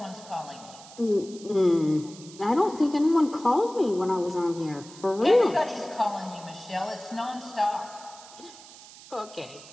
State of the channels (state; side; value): noise; right; hiss, 19 dB below the sound